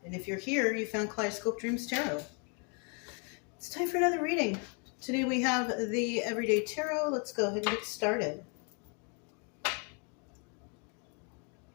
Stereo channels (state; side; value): quieter; right; 36.8 dB